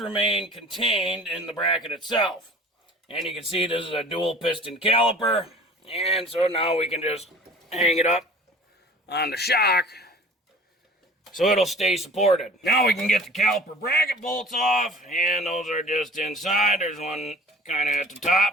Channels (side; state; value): both; normal; correlation 0.45